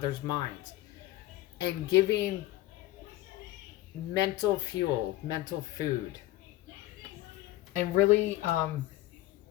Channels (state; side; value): quieter; right; 16.5 dB